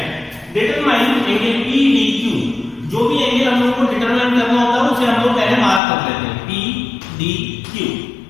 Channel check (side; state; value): right; drops out; at 5.8 s